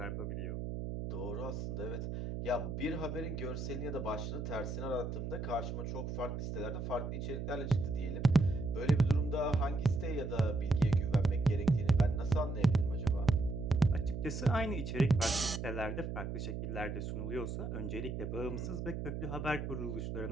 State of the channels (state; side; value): noise; right; hum, 4 dB below the sound